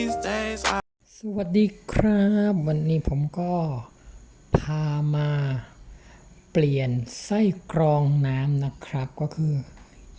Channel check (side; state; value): both; identical; correlation 1.00